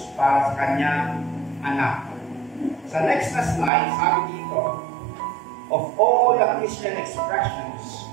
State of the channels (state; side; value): drops out; left; at 3.7 s